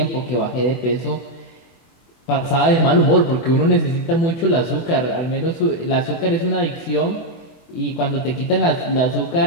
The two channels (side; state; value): right; late; 24 ms